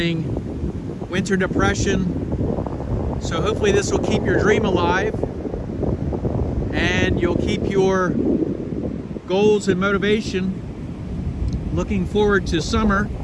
winter depression. So hopefully this will keep your dream alive, and you'll keep your goals and motivation looking forward to summer,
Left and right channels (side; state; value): both; identical; correlation 1.00